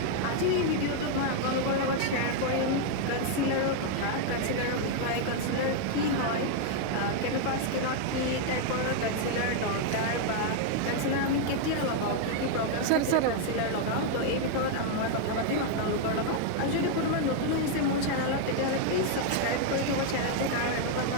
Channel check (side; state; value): both; different; correlation 0.00